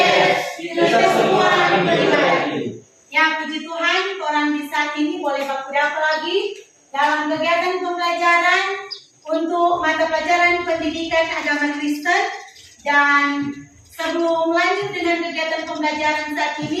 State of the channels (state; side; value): identical; both; correlation 1.00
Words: Kita semua diberi. Ya, puji Tuhan, orang di saat ini boleh baku dapat lagi dalam kegiatan pembelajaran untuk mata pelajaran pendidikan agama Kristen. Dan sebelum lanjut dengan kegiatan pembelajaran saat